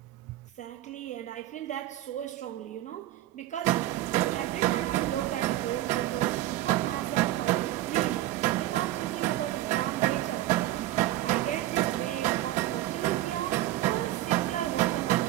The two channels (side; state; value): left; quieter; 14.8 dB